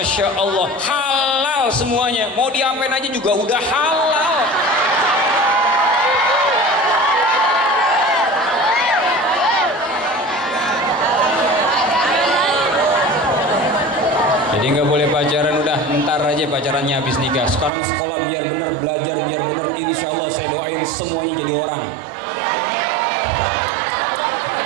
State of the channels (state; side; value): drops out; left; at 17.7 s